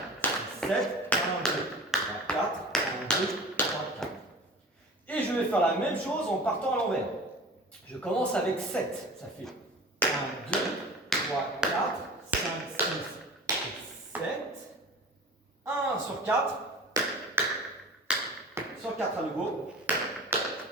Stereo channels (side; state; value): both; normal; correlation 0.38